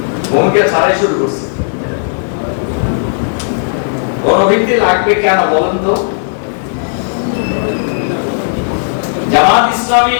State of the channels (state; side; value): silent; right; digital silence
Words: ভূমিকা ছাড়াই শুরু করছি। গণভিত্তি লাগবে কেন বলেন তো? জামাত ইসলামী